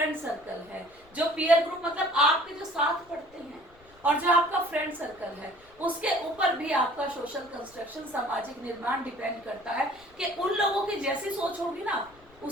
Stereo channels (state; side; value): noise; left; rumble, 27 dB below the sound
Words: सर्कल है, जो पीयर ग्रुप मतलब आपके जो साथ पढ़ते हैं, और जो आपका फ्रेंड सर्कल है, उसके ऊपर भी आपका सोशल कंस्ट्रक्शन, सामाजिक निर्माण डिपेंड करता है कि उन लोगों की जैसी सोच होगी ना,